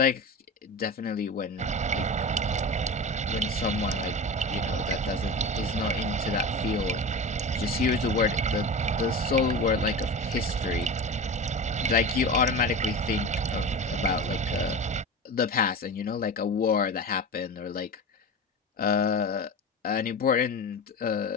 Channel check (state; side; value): normal; both; correlation 0.28